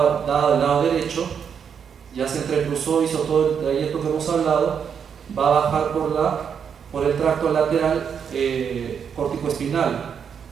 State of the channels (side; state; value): left; quieter; 7.3 dB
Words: del lado derecho, ya se entrecruzó, hizo todo el trayecto que hemos hablado, va a bajar por el tracto lateral córtico-espinal.